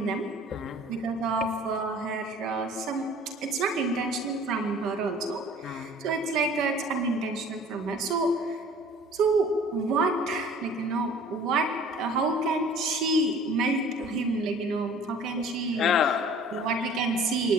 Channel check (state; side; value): normal; both; correlation 0.48